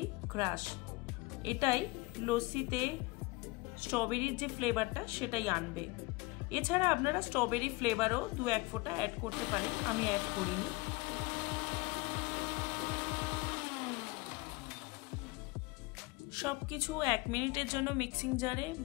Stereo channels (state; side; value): quieter; right; 23.8 dB